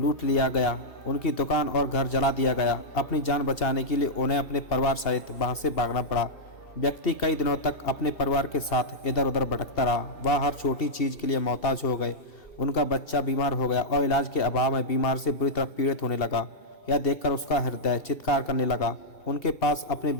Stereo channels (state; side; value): late; right; 2.6 ms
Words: लिया गया। उनकी दुकान और घर जला दिया गया। अपनी जान बचाने के लिए उन्हें अपने परिवार सहित वहां से भागना पड़ा। व्यक्ति कई दिनों तक अपने परिवार के साथ इधर उधर भटकता रहा। वह हर छोटी चीज के लिए मोहताज हो गए। उनका बच्चा बीमार हो गया और इलाज के अभाव में बीमार से बुरी तरह पीड़ित होने लगा। यह देखकर उसका हृदय चित्कार करने लगा। उनके पास अपने